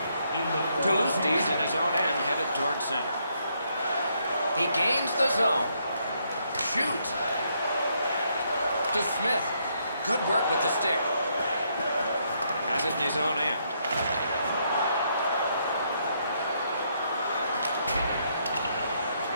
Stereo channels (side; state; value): both; inverted; correlation -0.74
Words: Toulousti's in his own end, headed towards center. He gains the zone. Shoots. To Smith. Good work with the stick. Has it in his own end.